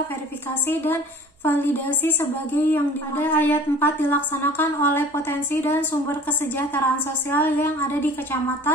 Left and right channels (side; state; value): both; normal; correlation 0.46